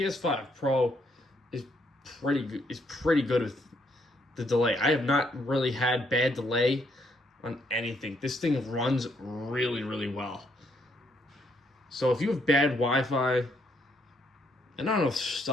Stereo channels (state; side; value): normal; both; correlation 0.73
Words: Pro is pretty good with the delay. I have not really had bad delay on anything. This thing runs really, really well. So if you have bad Wi-Fi, and I don't know if